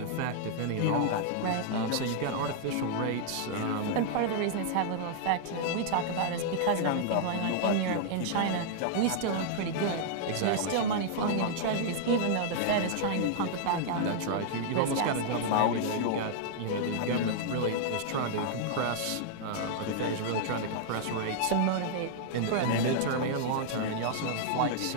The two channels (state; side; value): different; both; correlation -0.01